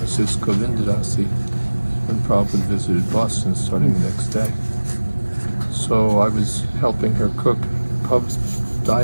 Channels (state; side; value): inverted; both; correlation -1.00